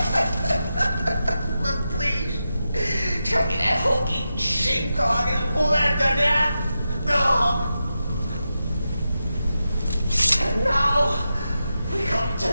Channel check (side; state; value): both; inverted; correlation -0.90